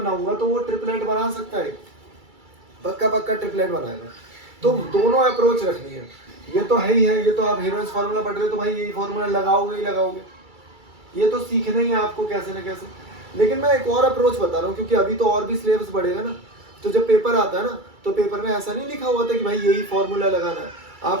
तो वो ट्रिपलेट बना सकता है, पक्का ट्रिपलेट बनाएगा, तो दोनों अप्रोच रखनी है, ये तो है ही है, ये तो आप हीरोन्स फार्मूला पढ़ रहे हो तो भाई यही फार्मूला लगाओगे ही लगाओगे, ये तो सीखना ही है आपको कैसे ना कैसे। लेकिन मैं एक और अप्रोच बता रहा हूँ, क्योंकि अभी तो और भी सिलेबस बढ़ेगा ना, तो जब पेपर आता है ना तो पेपर में ऐसा नहीं लिखा हुआ था कि भाई यही फॉर्मूला लगाना है,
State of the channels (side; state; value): left; late; 2.3 ms